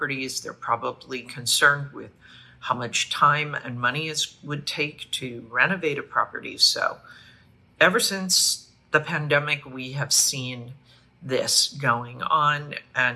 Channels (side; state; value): both; identical; correlation 1.00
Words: They're probably concerned with how much time and money it would take to renovate a property. So ever since the pandemic, we have seen this going on,